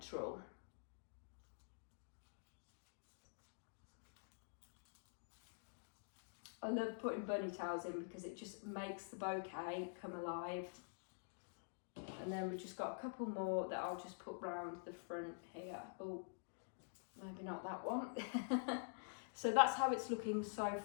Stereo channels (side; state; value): right; silent; digital silence